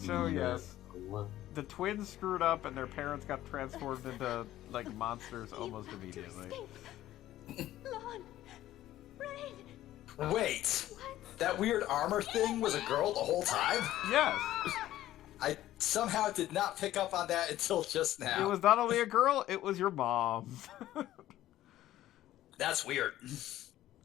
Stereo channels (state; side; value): quieter; right; 14.0 dB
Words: yes, the twins screwed up, and their parents got transformed into like monsters almost immediately. Lon, Rain. Wait, that weird armor thing was a girl the whole time? Yes, I somehow did not pick up on that until just now. it was not only a girl; it was your mom. That's weird.